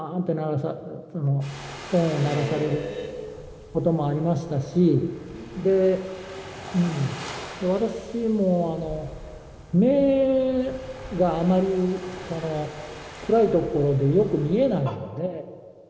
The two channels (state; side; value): identical; both; correlation 1.00